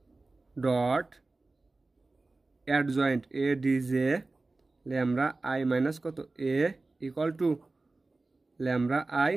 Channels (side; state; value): left; quieter; 3.3 dB